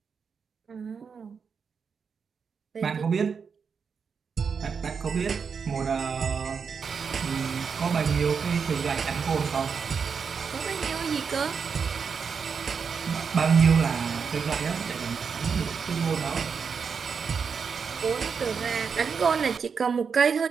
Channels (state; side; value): quieter; left; 6.0 dB